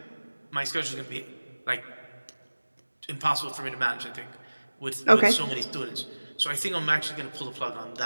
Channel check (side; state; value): both; inverted; correlation -1.00